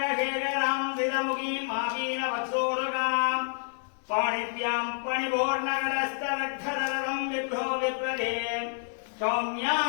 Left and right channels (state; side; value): silent; right; 59 dB below the other